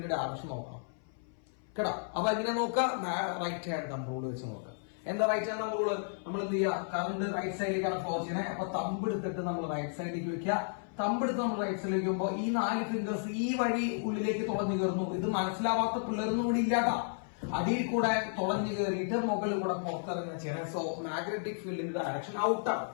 ഡയറക്ഷൻ നോക്കണം കേട്ടോ. അപ്പൊ എങ്ങനെ നോക്കാം? റൈറ്റ് ഹാൻഡ് തമ്പ് റൂൾ വെച്ച് നോക്കാം. എന്താ റൈറ്റ് ഹാൻഡ് തമ്പ് റൂള്? നമ്മൾ എന്ത് ചെയ്യുക? കറണ്ട് റൈറ്റ് സൈഡിലേക്കാണ് ഫ്ലോ ചെയ്യുന്നത്. അപ്പൊ തമ്പ് എടുത്തിട്ട് നമ്മൾ റൈറ്റ് സൈഡിലേക്ക് വെക്കുക. തമ്പ് എടുത്ത് നമ്മൾ റൈറ്റ് സൈഡിലേക്ക് വെക്കുമ്പോൾ ഈ 4 ഫിംഗേഴ്സ് ഈ വഴി ഉള്ളിലേക്ക് തുളഞ്ഞു കയറുന്നു. ഇത് മനസ്സിലാവാത്ത പിള്ളേരൊന്നും കൂടി ഇല്ലാട്ടാ. അടിയിൽ കൂടെ തുളഞ്ഞു കയറിയിട്ട് മുകളിൽ കൂടെ പുറത്തിറങ്ങുന്ന ചെയ്യണം. സോ മാഗ്നറ്റിക് ഫീൽഡിന്റെ ഡയറക്ഷൻ ഔട്ടാണ്.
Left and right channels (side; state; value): right; silent; 56 dB below the other